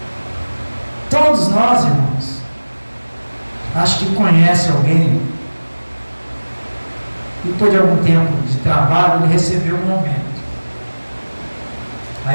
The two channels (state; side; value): inverted; both; correlation -1.00